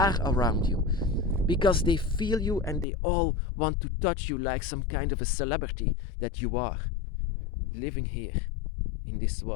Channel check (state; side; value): drops out; right; at 2.9 s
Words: around you. Because they feel you, and they all want to touch you like some kind of a celebrity that you are. Living here in this